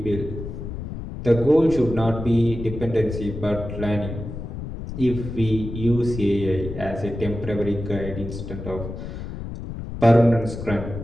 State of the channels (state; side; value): noise; left; rumble, 8 dB below the sound